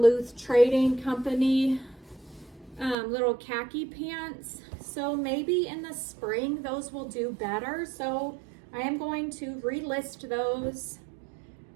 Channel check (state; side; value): drops out; left; at 3.0 s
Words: Trading Company little khaki pants. So maybe in the spring those will do better. So I am going to relist those.